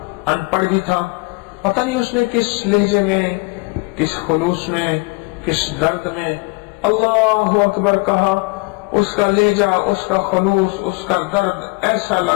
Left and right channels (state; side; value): quieter; right; 27.2 dB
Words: ان پڑھ بھی تھا، پتہ نہیں اس نے کس لہجے میں، کس خلوص میں، کس درد میں اللہ اکبر کہا، اس کا لہجہ، اس کا خلوص، اس کا درد